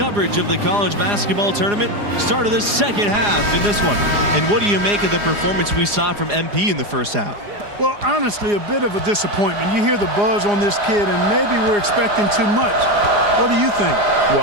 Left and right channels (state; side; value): late; left; 4.9 ms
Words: of the college basketball tournament. Start of the second half in this one. And what do you make of the performance we saw from MP in the first half? Well, honestly, a bit of a disappointment. You hear the buzz on this kid, and maybe we're expecting too much. What do you think?